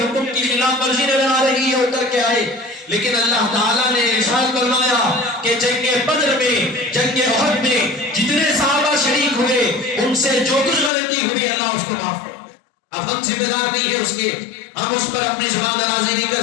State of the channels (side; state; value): right; drops out; at 10.9 s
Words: کی خلاف ورزی نظر آ رہی ہے، اتر کے آئے، لیکن اللہ تعالیٰ نے ارشاد فرمایا کہ جنگ بدر میں، جنگ احد میں جتنے صحابہ شریک ہوئے، ان سے جو کچھ غلطی ہوئی اللہ اس کو معاف کرے۔ اب ہم ذمہ دار نہیں ہے اس کے، ہم اس پر اپنی زبان درازی نہیں